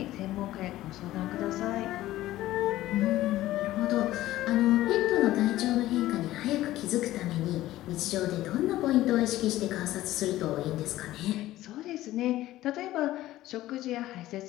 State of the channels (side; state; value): right; quieter; 15.4 dB